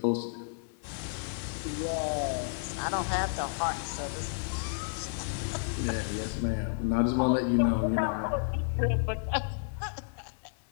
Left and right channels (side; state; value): right; silent; digital silence